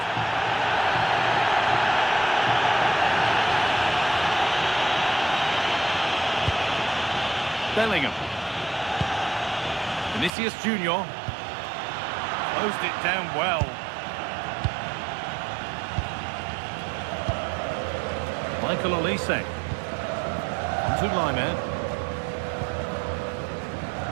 Bellingham. Vinicius Junior. Closed it down well. Michael Olise. To Lyman.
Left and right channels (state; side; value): drops out; left; at 10.3 s